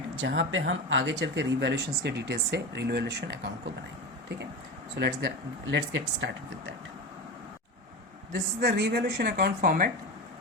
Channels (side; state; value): both; normal; correlation 0.23